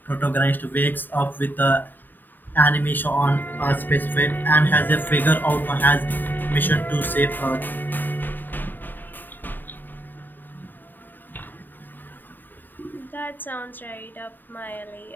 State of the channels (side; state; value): right; late; 0.091 ms